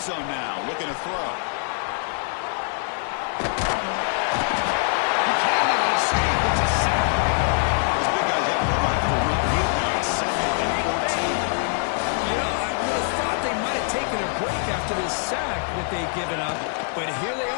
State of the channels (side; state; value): right; silent; 59 dB below the other